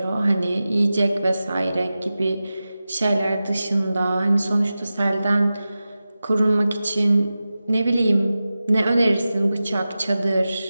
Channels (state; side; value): inverted; both; correlation -0.94